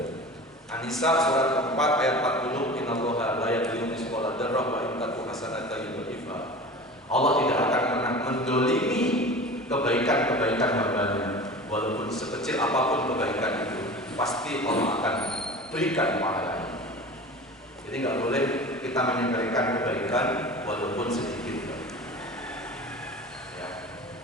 An-Nisa surat keempat ayat 40, innallaha la yadhlimu mithqala dzarrah wa in taku hasanatan yudhifha. Allah tidak akan pernah mendolimi kebaikan-kebaikan hamba-Nya. Walaupun sekecil apapun kebaikan itu, pasti Allah akan berikan pahalanya. Jadi nggak boleh kita menyepelekan kebaikan walaupun sedikit. Ya.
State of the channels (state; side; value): normal; both; correlation 0.36